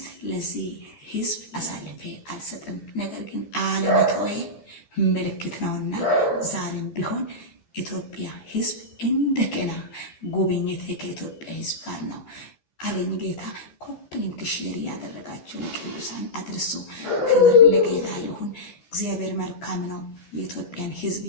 ለዚህ ህዝብ አሳልፌ አልሰጥም። ነገር ግን አለመተው ምልክት ነውና ዛሬም ቢሆን ኢትዮጵያ ህዝብ እንደገና ጉብኝት ከኢትዮጵያ ህዝብ ጋር ነው አለኝ ጌታ። ኮፕሊንክ ሼር ያደረጋችሁ ለቅዱሳን አድርሱ። ክብር ለጌታ ይሁን። እግዚአብሔር መልካም ነው። የኢትዮጵያን ህዝብ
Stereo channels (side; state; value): right; late; 13 ms